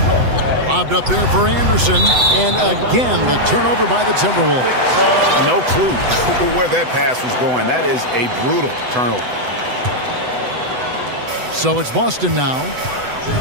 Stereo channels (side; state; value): left; late; 8.0 ms